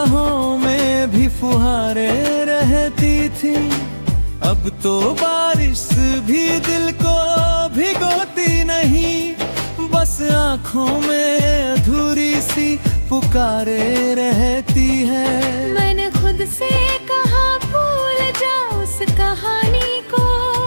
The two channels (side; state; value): both; inverted; correlation -1.00